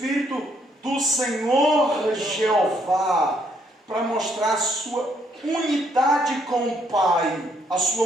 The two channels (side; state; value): both; normal; correlation 0.70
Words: do Senhor Jeová, para mostrar a sua unidade com o Pai. A